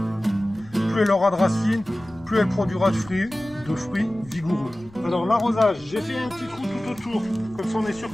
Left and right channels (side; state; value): left; noise; rumble, 24 dB below the sound